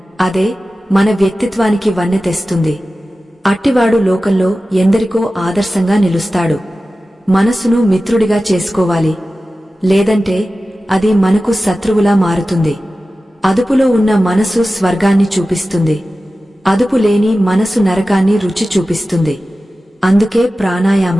అదే మన వ్యక్తిత్వానికి వన్నె తెస్తుంది. అట్టివాడు లోకంలో ఎందరికో ఆదర్శంగా నిలుస్తాడు. మనసును మిత్రుడిగా చేసుకోవాలి, లేదంటే అది మనకు శత్రువులా మారుతుంది. అదుపులో ఉన్న మనసు స్వర్గాన్ని చూపిస్తుంది, అదుపు లేని మనసు నరకాన్ని రుచి చూపిస్తుంది. అందుకే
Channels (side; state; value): both; normal; correlation 0.95